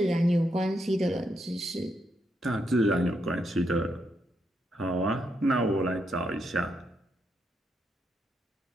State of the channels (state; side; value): normal; both; correlation 0.80